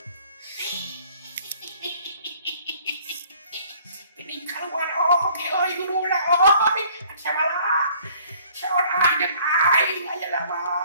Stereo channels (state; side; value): inverted; both; correlation -0.57